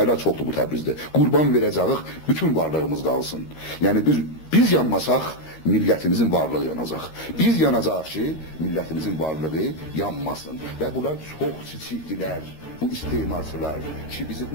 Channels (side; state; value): right; late; 13 ms